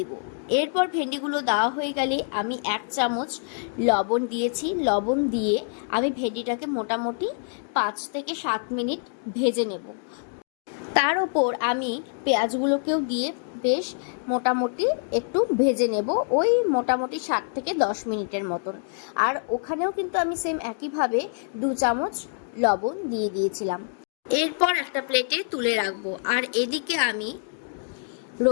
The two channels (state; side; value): silent; right; digital silence